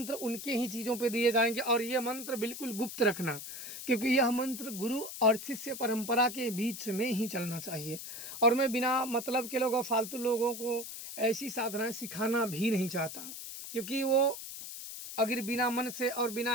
उनके ही चीज़ों पे दिए जाएंगे। और ये मंत्र बिल्कुल गुप्त रखना, क्योंकि यह मंत्र गुरु और शिष्य परंपरा के बीच में ही चलना चाहिए। और मैं बिना मतलब के लोगों, फालतू लोगों को ऐसी साधनाएं सिखाना भी नहीं चाहता, क्योंकि वो अगर बिना मन से और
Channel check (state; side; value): noise; left; hiss, 9 dB below the sound